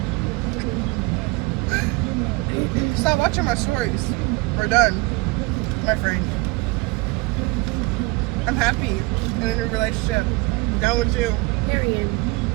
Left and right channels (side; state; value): left; quieter; 24.3 dB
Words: Stop watching my stories. We're done, my friend. I'm happy in a new relationship. Done with you. Period.